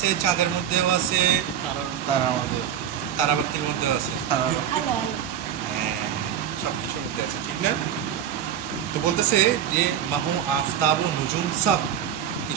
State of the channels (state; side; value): quieter; left; 9.4 dB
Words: চাঁদের মধ্যেও আছে, তার আমাদের তারাবাতির মধ্যেও আছে, হ্যাঁ সব কিছুর মধ্যে আছে, ঠিক না? তো বলতেছে যে মাহু আফতাব ও নুজুম সব,